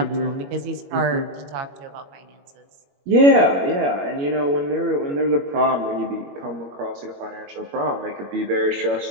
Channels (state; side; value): late; left; 21 ms